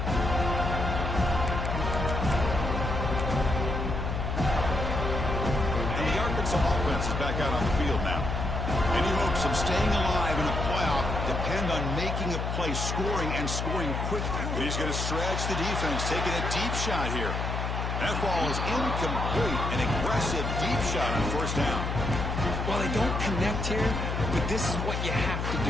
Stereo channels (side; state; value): left; noise; hum, 2 dB below the sound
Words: Offense is back out on the field now. Any hopes of staying alive in a playoff depend on making a play, scoring, and scoring quickly. But he's going to stretch the defense, taking a deep shot here. That ball is incomplete. An aggressive deep shot on 1st down. Well, they don't connect here, but this is what you have to